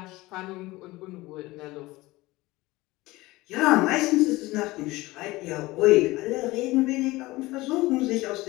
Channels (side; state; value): right; quieter; 19.9 dB